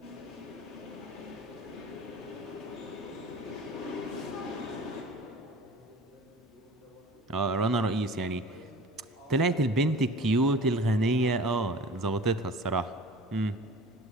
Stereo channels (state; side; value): normal; both; correlation 0.41